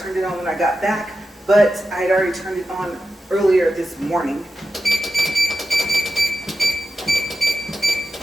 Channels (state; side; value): normal; both; correlation 0.91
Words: it on when I got back, but I had already turned it on earlier this morning.